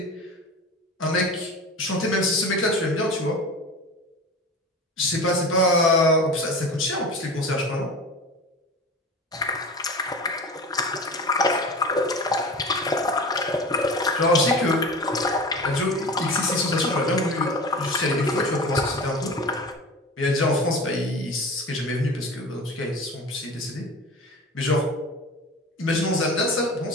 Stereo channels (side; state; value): both; normal; correlation 0.33